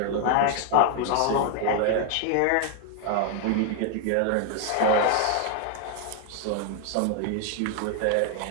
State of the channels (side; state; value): both; different; correlation 0.00